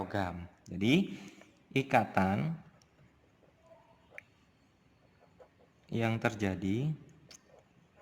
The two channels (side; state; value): both; identical; correlation 1.00